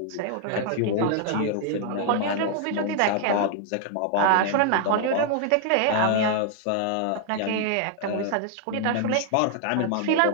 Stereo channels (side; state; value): both; different; correlation 0.00